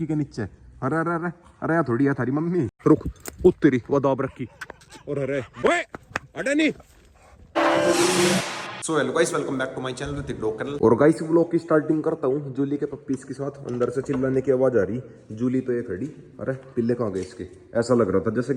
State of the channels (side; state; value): both; identical; correlation 1.00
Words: के नीचे। अरे अरे अरे अरे यार थोड़ी है थारी मम्मी, रुक उत्तरी वो दाब रखी। और अरे ओए अरे नहीं। So hello guys, welcome back to my channel Hrithik dog channel. और गाइस व्लॉग की स्टार्टिंग करता हूँ जूली के पप्पीज के साथ। अंदर से चिल्लाने की आवाज आ रही, जूली तो ये खड़ी। अरे पिल्ले कहाँ गए इसके? ऐसा लग रहा था जैसे